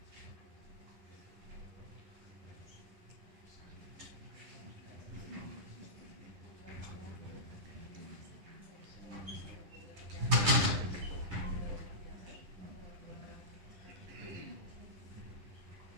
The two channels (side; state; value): left; late; 11 ms